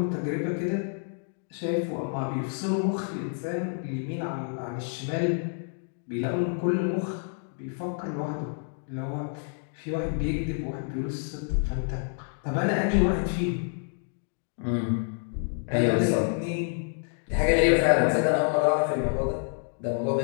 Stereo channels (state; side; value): silent; right; 59 dB below the other